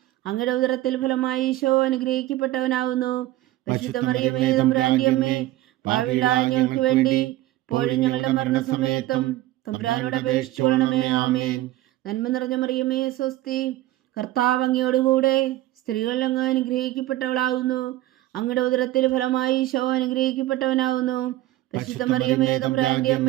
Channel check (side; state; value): left; quieter; 16.0 dB